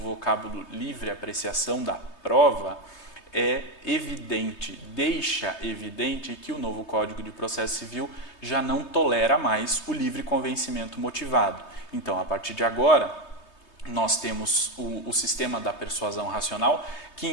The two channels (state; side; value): late; right; 3.2 ms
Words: livre apreciação da prova é evidente, deixa evidente que o novo Código de Processo Civil já não tolera mais o livre convencimento motivado. Então, a partir de agora, nós temos o sistema da persuasão racional, que